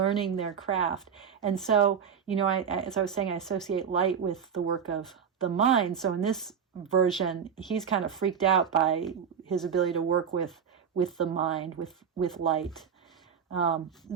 their craft. And so, as I was saying, I associate light with the work of the mind. So in this version, he's kind of freaked out by his ability to work with the mind, with light.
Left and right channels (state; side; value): quieter; left; 7.3 dB